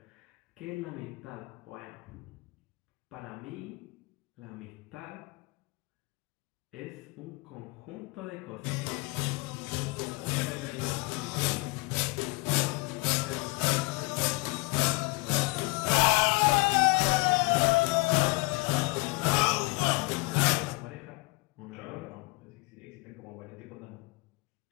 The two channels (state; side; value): quieter; right; 26.5 dB